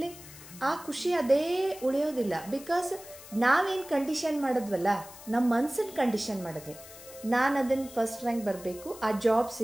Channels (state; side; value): noise; left; hiss, 17 dB below the sound